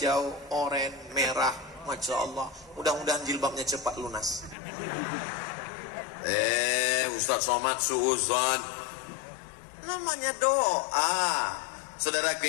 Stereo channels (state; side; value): drops out; right; at 4.5 s